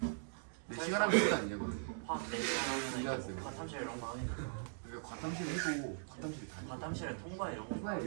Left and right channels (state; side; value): silent; left; digital silence